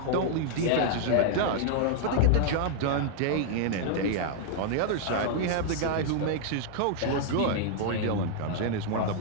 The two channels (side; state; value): both; different; correlation 0.00